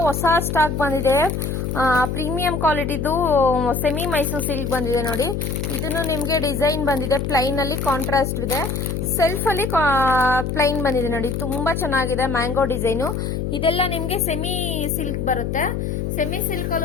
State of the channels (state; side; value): noise; left; hum, 2 dB below the sound